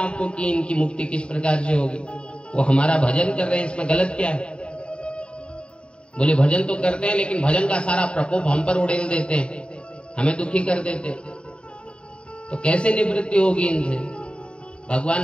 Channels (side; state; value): right; late; 0.054 ms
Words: कि इनकी मुक्ति किस प्रकार से होगी? वो हमारा भजन कर रहे हैं, इसमें गलत क्या है? बोले भजन तो करते हैं लेकिन भजन का सारा प्रकोप हम पर उड़ेल देते हैं, हमें दुखी कर देते हैं, तो कैसे निवृत्ति होगी इनसे?